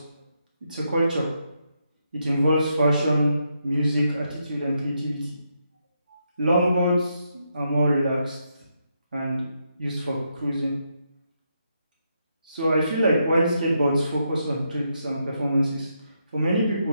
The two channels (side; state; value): both; inverted; correlation -0.80